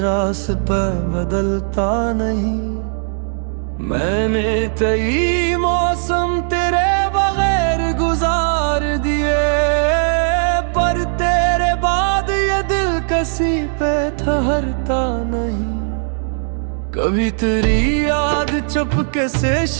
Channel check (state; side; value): silent; left; digital silence